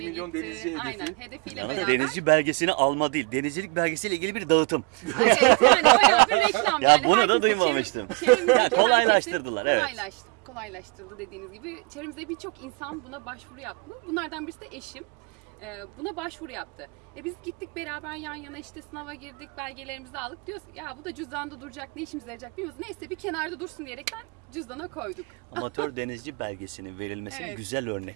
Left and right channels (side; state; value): left; quieter; 30.0 dB